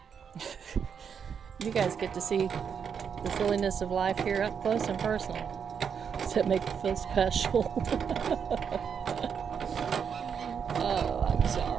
You guys get to see the silliness of life here up close and personal. Does that make you feel special? Oh, I'm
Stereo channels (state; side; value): quieter; left; 7.1 dB